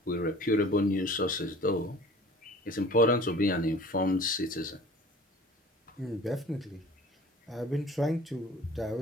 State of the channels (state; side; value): normal; both; correlation 0.46